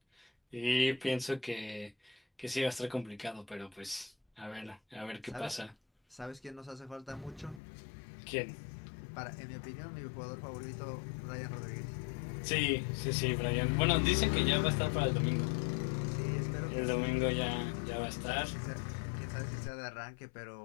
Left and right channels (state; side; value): drops out; right; at 7.6 s